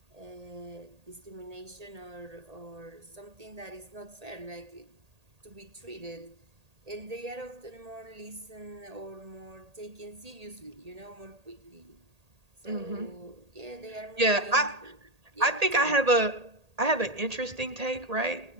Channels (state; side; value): late; left; 1.8 ms